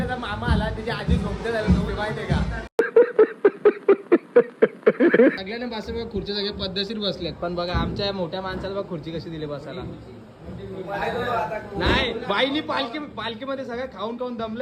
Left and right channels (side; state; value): both; identical; correlation 1.00